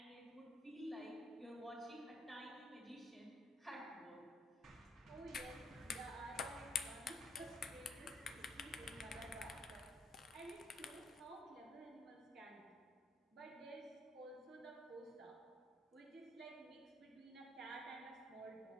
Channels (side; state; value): both; normal; correlation 0.70